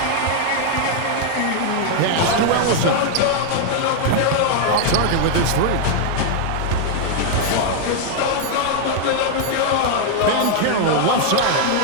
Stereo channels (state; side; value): different; both; correlation 0.00